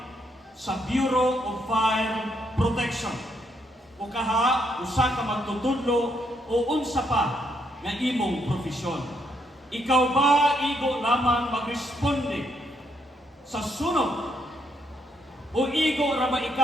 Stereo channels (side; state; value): both; normal; correlation 0.75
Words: sa Bureau of Fire Protection. O kaha usa ka magtutudlo o unsa pa nga imong profesyon. Ikaw ba igo lamang magresponde sa sunog o igo ra ba